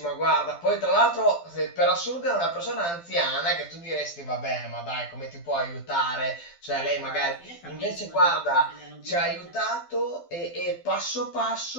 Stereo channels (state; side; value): late; right; 12 ms